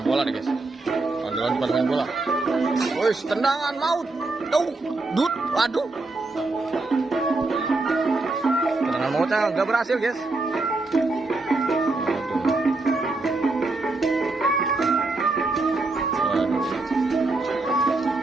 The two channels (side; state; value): left; quieter; 3.3 dB